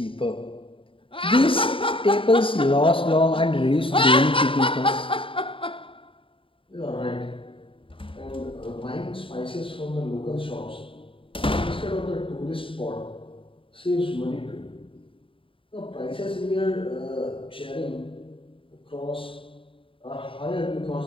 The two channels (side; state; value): right; late; 0.25 ms